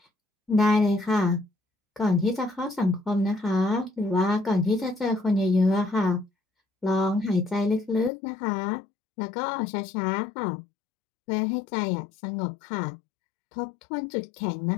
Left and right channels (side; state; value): right; drops out; at 8.1 s